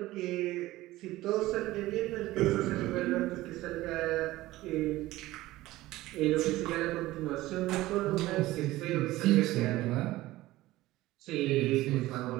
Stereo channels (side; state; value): left; quieter; 17.3 dB